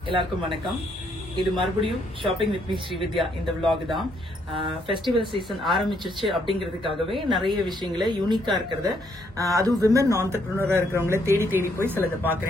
எல்லாருக்கும் வணக்கம். இது மறுபடியும் ஷாப்பிங் வித் மீ ஸ்ரீவித்யா இந்த vlog தான். ஃபெஸ்டிவல் சீசன் ஆரம்பிச்சிருச்சு அப்படிங்கிறதுக்காகவே நிறைய விஷயங்களை யூனிக்கா இருக்கிறத, அதுவும் விமன் ஆண்டர்பிரினரா இருக்கிறவங்கள தேடி தேடி போய் சிலதை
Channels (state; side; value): normal; both; correlation 0.72